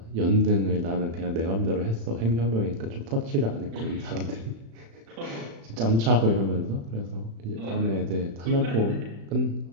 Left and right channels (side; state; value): left; late; 35 ms